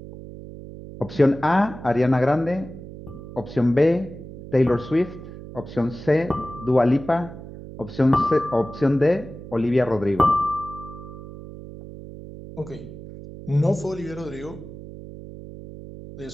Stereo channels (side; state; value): right; noise; hum, 14 dB below the sound